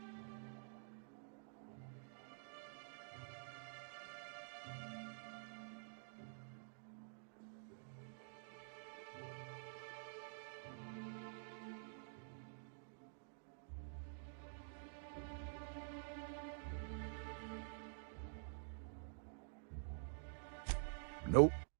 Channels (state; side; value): silent; left; digital silence